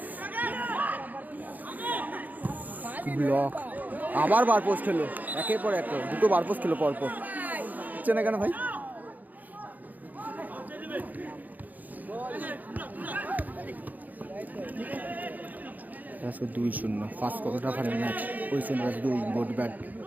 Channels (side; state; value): left; late; 0.082 ms